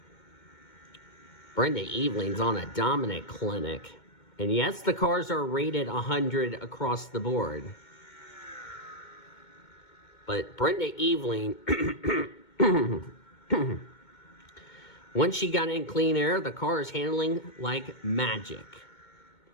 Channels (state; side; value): late; right; 2.2 ms